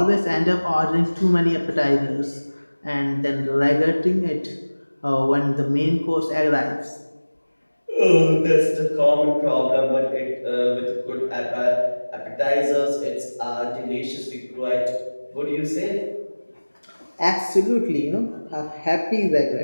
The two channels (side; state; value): both; inverted; correlation -1.00